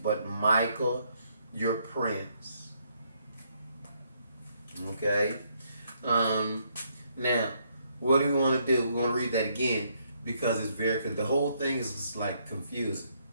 Michael your prince." Okay? Now, what do we want to do? We want to read that again because it's because the whole thing is just like confusing.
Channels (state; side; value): inverted; both; correlation -0.72